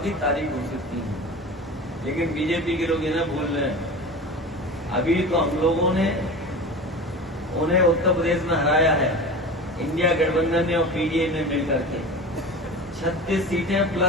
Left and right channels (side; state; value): both; normal; correlation 0.32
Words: की तारीख घोषित की। लेकिन बीजेपी के लोग इन्हें भूल रहे हैं। अभी तो हम लोगों ने उन्हें उत्तर प्रदेश में हराया है, इंडिया गठबंधन ने और पीडीए ने मिलकर के 36 सीटें